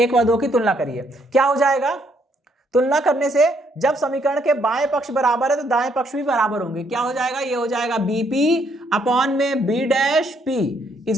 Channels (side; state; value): both; normal; correlation 0.70